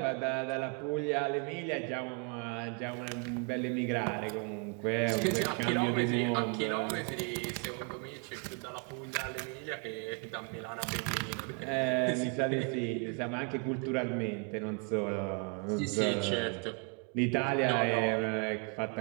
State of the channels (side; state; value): left; quieter; 34.9 dB